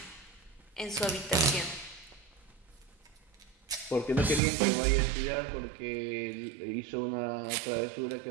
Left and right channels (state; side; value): drops out; left; at 4.4 s